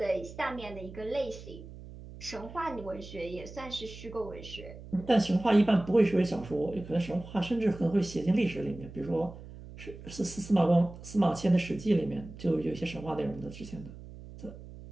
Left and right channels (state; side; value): noise; right; hum, 15 dB below the sound